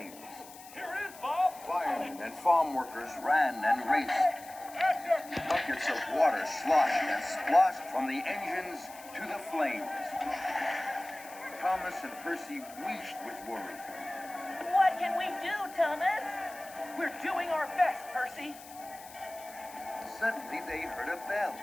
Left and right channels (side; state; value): left; noise; hiss, 18 dB below the sound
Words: Here is Bob. Firemen and farm workers ran and raced. Buckets of water sloshed and splashed from the engines to the flames. Thomas and Percy wheezed with worry. What can we do, Thomas? We're doing our best, Percy. Suddenly they heard a bell.